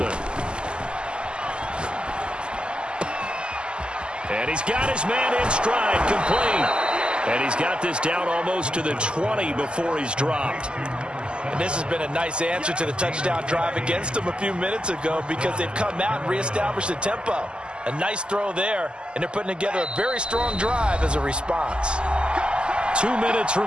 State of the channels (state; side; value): late; left; 0.050 ms